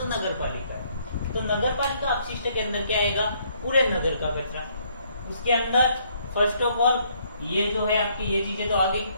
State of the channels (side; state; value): both; inverted; correlation -0.67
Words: नगर पालिका। तो नगर पालिका अपशिष्ट के अंदर क्या आएगा, पूरे नगर का कचरा। उसके अंदर फर्स्ट ऑफ ऑल ये जो है आपकी ये चीजें तो आ गई।